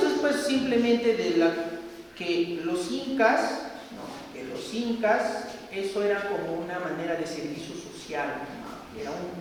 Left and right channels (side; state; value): both; identical; correlation 1.00